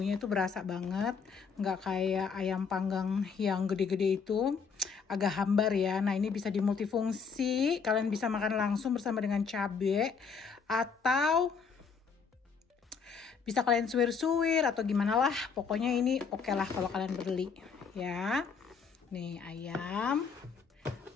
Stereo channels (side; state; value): right; quieter; 5.8 dB